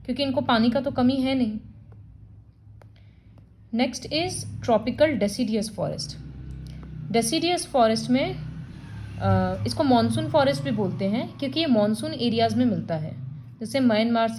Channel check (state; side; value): identical; both; correlation 1.00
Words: क्योंकि इनको पानी का तो कमी है नहीं. Next is tropical deciduous forest. Deciduous forest में इसको मॉनसून फॉरेस्ट भी बोलते हैं क्योंकि ये मॉनसून एरियाज़ में मिलता है, जैसे Myanmar,